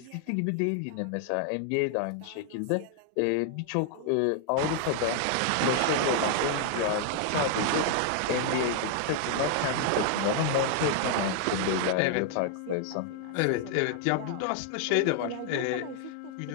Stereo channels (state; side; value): different; both; correlation 0.00